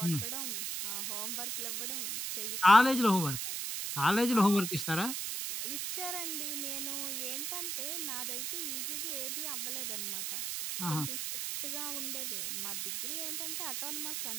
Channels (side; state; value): right; noise; hiss, 2 dB below the sound